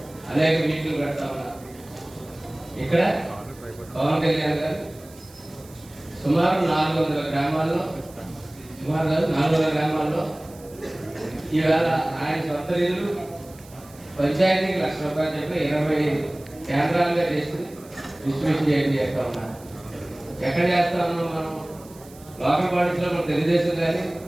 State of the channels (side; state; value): right; noise; hiss, 23 dB below the sound